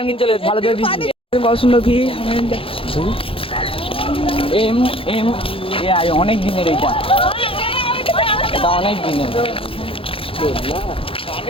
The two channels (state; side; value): late; right; 0.27 ms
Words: চলে ভালো করে দিচ্ছি। কত সুন্দর কি এম এম এআই অনেক দিনের এটা, এটা অনেক দিনের।